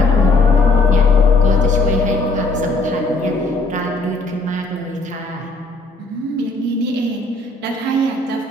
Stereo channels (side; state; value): right; quieter; 3.2 dB